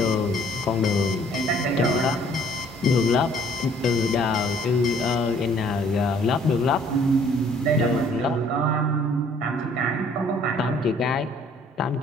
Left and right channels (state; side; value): normal; both; correlation 0.59